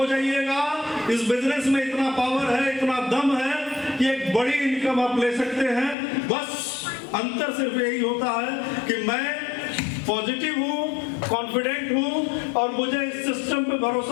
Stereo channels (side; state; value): right; drops out; at 6.0 s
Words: जाइएगा, इस बिजनेस में इतना पावर है, इतना दम है कि एक बड़ी इनकम आप ले सकते हैं। बस अंतर सिर्फ यही होता है कि मैं पॉजिटिव हूँ, कॉन्फिडेंट हूँ और मुझे इस सिस्टम पे